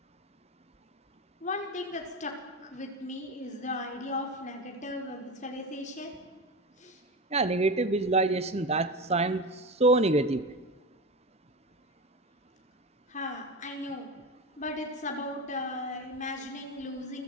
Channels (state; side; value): normal; both; correlation 0.22